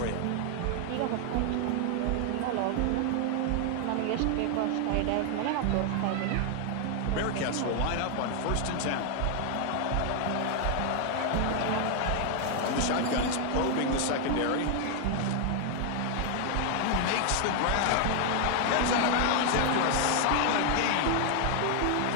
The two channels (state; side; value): different; both; correlation 0.00